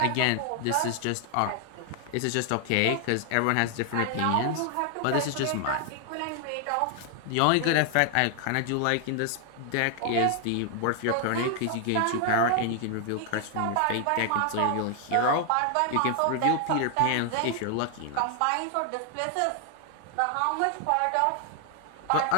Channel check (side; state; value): both; different; correlation 0.00